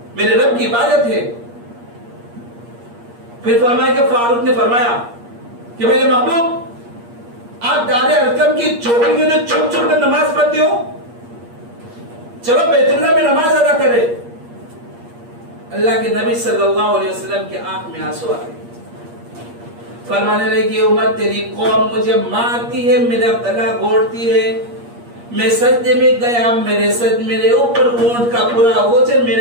मेरे रब की इबादत है। फिर फरमाया कि फारूक ने फरमाया कि मेरे महबूब, आप दारे अरकम की चौकी के अंदर छुप छुप कर नमाज पढ़ते हो, चलो बैतुल्लाह में नमाज अदा करे। अल्लाह के नबी सल्लल्लाहु अलैहि वसल्लम की आंख में आंसू आ गए। फरमाने लगे, उम्मत तेरी कौम मुझे मारती है, मेरा गला घोटती है, मैं सजदे में गया, मेरे ऊपर ऊंट का पूरा ओजन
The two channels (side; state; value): left; late; 8.5 ms